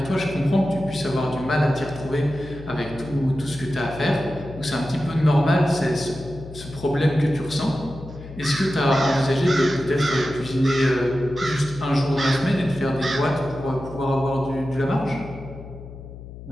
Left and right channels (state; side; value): noise; left; hum, 14 dB below the sound